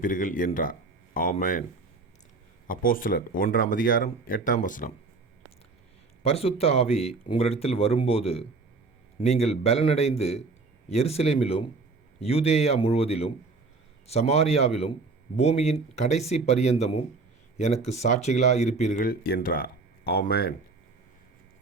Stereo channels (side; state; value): left; quieter; 3.9 dB